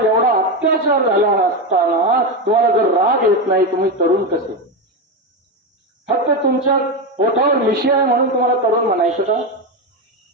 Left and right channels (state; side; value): normal; both; correlation 0.13